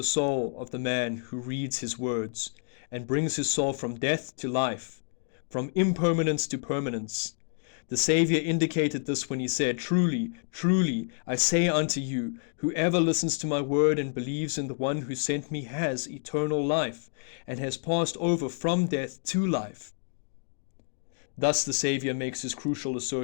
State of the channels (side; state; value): right; silent; 59 dB below the other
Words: soul of the man who reads his words, and brings his soul from death to life, from impermanence to permanence. The Saviour indicated this when he said, "Truly, truly, I say unto you, whoever listens to my word and believes in the one who sent me has eternal life, and has passed over from death to life." Thus the Saviour makes his crucial